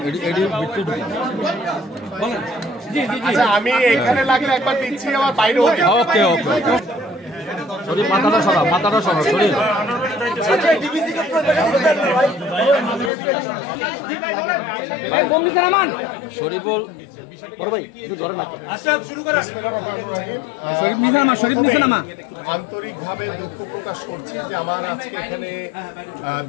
এডি বিট্টু বলেন। জি জি জি, আচ্ছা আমি এখানে লাগলে একবার দিচ্ছি, আবার বাইরে ওকে ওকে ওকে। শরীফ মাথাটা সরা, মাথাটা সরা শরীফ। আচ্ছা ডিবিসি কে তো দেখা দিতে ভাই, ভাই বোম নিচে নামান। শরীফ বল বড় ভাই একটু ধরে না। আচ্ছা শুরু করেন। বিসমিল্লাহির রহমানির রহিম। শরীফ নিচে নামা, শরীফ নিচে নামা। আন্তরিকভাবে দুঃখ প্রকাশ করছি যে আমার আজকে এখানে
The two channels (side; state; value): right; drops out; at 13.1 s